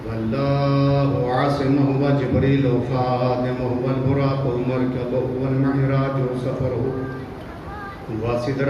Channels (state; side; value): identical; both; correlation 1.00